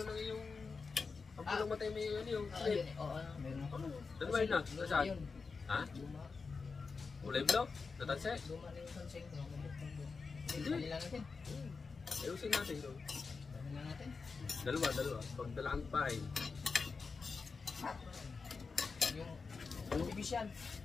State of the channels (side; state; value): right; quieter; 4.7 dB